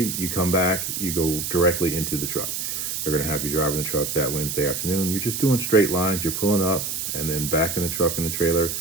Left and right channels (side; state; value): right; noise; hiss, 3 dB below the sound